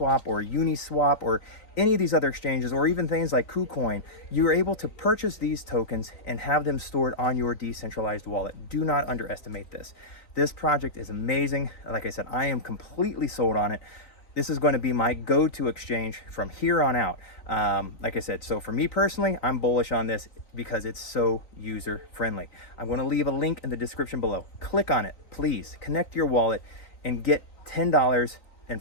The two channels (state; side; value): late; right; 3.9 ms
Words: or Uniswap or any of these other exchanges, or even things like KuCoin, you are able to purchase these tokens and have them stored on your decentralized wallet. Do not underestimate this. This project is amazing. Like I said, I am completely sold on it. This is going to be my go-to exchange from here on out. Like I said, so for me personally, I'm bullish on this because it's so user-friendly. I'm going to leave a link in the description below. Click on it, please. Connect your wallet and get $10 and